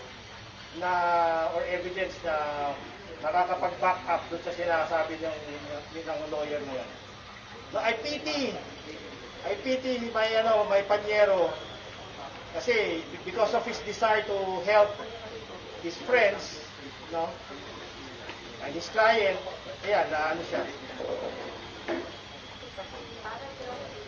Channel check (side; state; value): both; identical; correlation 1.00